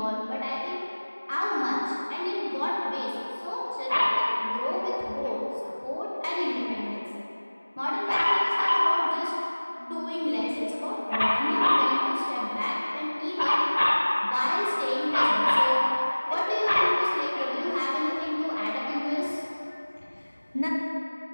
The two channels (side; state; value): both; inverted; correlation -1.00